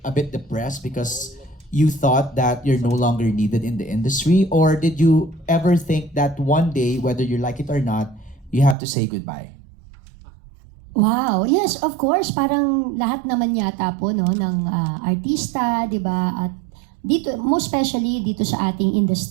a bit depressed because you thought that you're no longer needed in the industry? Or did you ever think that one day, whether you like it or not, you have to say goodbye? Wow. Yes, of course. Parang lahat naman yata po no, ng artista, di ba? At dito, most especially dito sa ating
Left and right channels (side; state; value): left; drops out; at 8.8 s